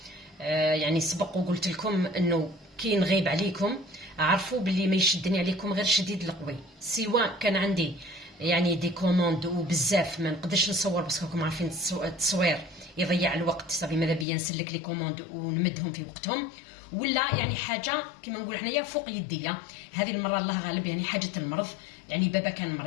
يعني سبق وقلت لكم انه كي نغيب عليكم عرفوا باللي ما يشدني عليكم غير شديد القوي، سواء كان عندي يعني دي كوموند وبزاف ما نقدرش نصور بس راكم عارفين التصوير يضيع الوقت، صافي ماذا بيا نسلك لي كوموند ونمدهم في وقتهم، ولا يعني حاجه كما نقول حنايا فوق يديا. هذه المره الله غالب يعني حاجه المرض، يعني بابا كان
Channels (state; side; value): drops out; right; at 14.2 s